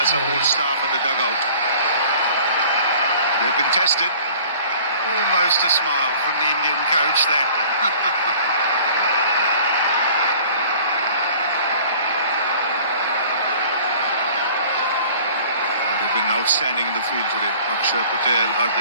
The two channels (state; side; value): inverted; both; correlation -0.49